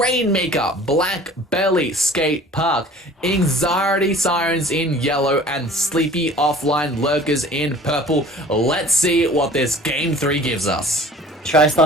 Black Belly Skate Park, Anxiety Sirens in yellow, and Sleepy Offline Lurkers in purple. Let's see what this Game 3 gives us.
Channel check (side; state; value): both; normal; correlation 0.47